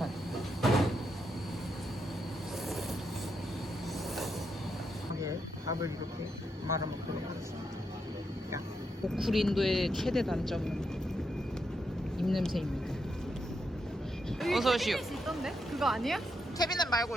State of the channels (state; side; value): normal; both; correlation 0.81